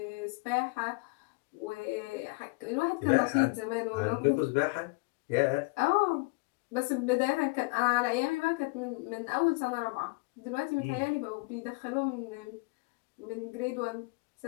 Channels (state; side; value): quieter; right; 28.3 dB